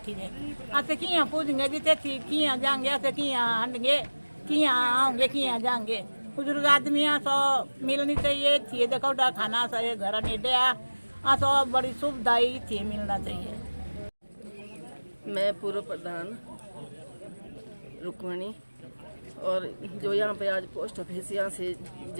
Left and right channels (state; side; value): inverted; both; correlation -1.00